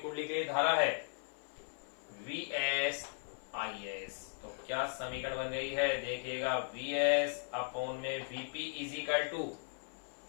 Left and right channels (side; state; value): right; silent; 53 dB below the other